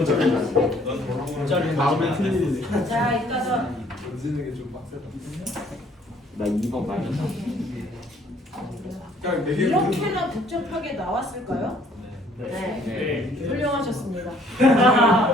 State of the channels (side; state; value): both; normal; correlation 0.61